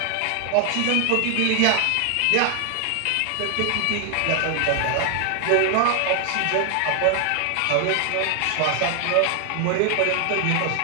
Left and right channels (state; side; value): different; both; correlation 0.00